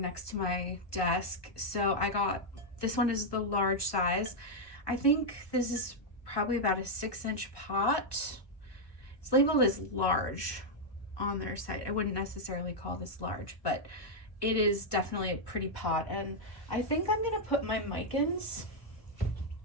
to my desk. So I got, this one is the large size. I think this is probably about a 6-inch pot. It's labeled as large on their site. I wouldn't necessarily call this large, but it is definitely a pretty pot. And I think I'm gonna put my micans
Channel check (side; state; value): right; late; 1.2 ms